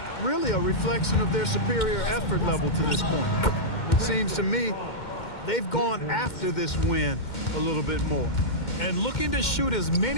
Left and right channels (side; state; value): right; late; 2.1 ms